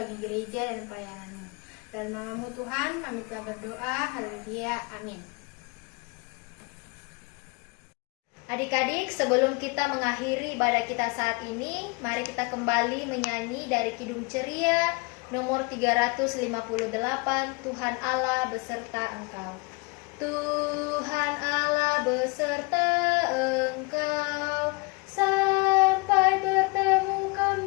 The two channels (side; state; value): right; quieter; 28.4 dB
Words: gereja dan pelayanan-Mu. Dalam nama-Mu Tuhan, kami telah berdoa. Haleluya. Amin. Adik-adik, sebelum kita mengakhiri ibadah kita saat ini, mari kita kembali menyanyi dari Kidung Ceria nomor 358, Tuhan Allah beserta Engkau. Tuhan Allah beserta Engkau, sampai bertemu